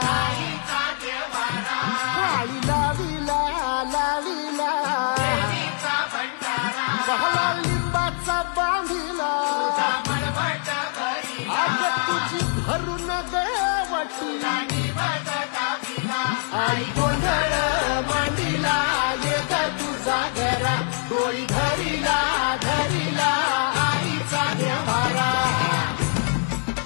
काळी लावीला लावीला पहला लिंबाचा बांधिला आग तुझी भरून गवटी आई गोंधळ मांडीला ये तुझा घरा डोळी धरीला धरीला आईचा देवारा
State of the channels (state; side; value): silent; right; 56 dB below the other